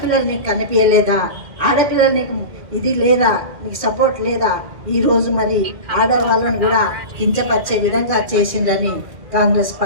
నీకు కనిపించలేదా? ఆడపిల్లలు నీకు ఇది లేదా, నీకు సపోర్ట్ లేదా? ఈరోజు మరి ఆడవాళ్ళని కూడా కించపరిచే విధంగా చేసిందని కాంగ్రెస్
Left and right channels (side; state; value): left; late; 2.4 ms